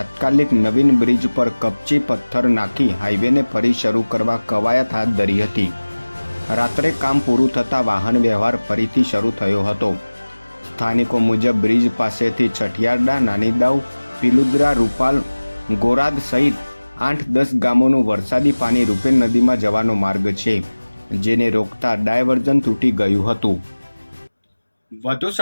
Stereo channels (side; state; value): both; inverted; correlation -1.00